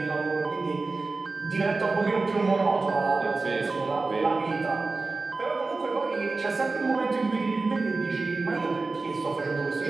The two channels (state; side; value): quieter; left; 3.7 dB